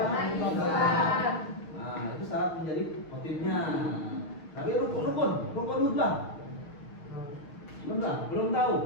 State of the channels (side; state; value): right; late; 6.5 ms